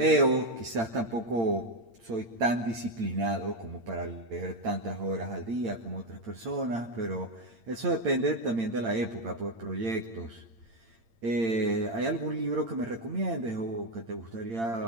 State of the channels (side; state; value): left; late; 8.8 ms